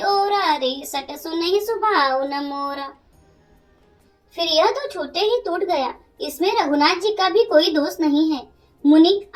ओरा रे सट सुनहि सुभाव न मोरा। फिर यह तो छूटे ही टूट गया, इसमें रघुनाथ जी का भी कोई दोष नहीं है। मुनि,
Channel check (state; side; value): identical; both; correlation 1.00